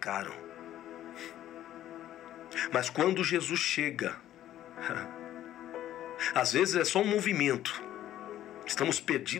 Mas quando Jesus chega, às vezes é só um movimento, estamos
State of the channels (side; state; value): right; quieter; 12.7 dB